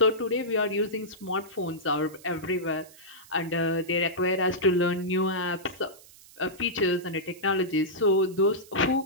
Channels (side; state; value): right; noise; hiss, 22 dB below the sound